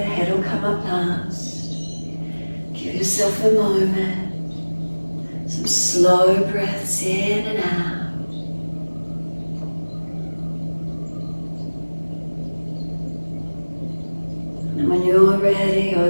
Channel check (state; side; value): inverted; both; correlation -1.00